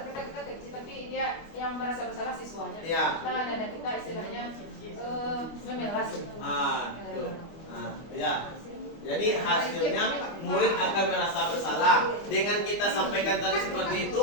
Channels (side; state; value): right; late; 25 ms